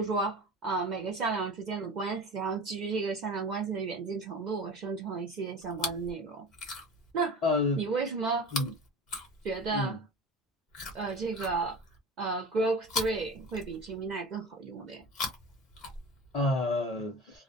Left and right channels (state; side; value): normal; both; correlation 0.33